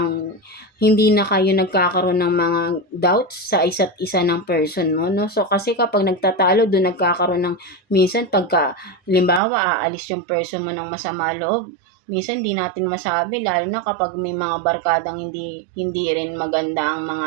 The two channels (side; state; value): left; drops out; at 9.4 s